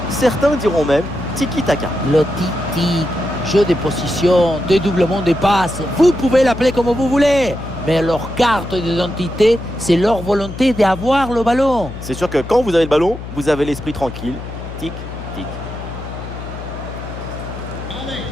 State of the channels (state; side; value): noise; left; hum, 10 dB below the sound